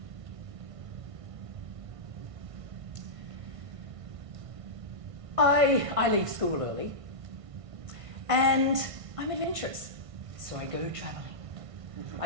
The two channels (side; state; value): left; late; 1.5 ms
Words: I leave school early, and I'm adventurous, so I go travelling.